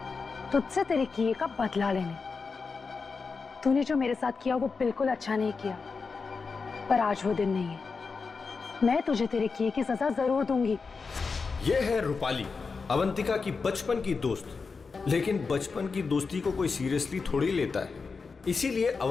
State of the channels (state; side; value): quieter; right; 4.7 dB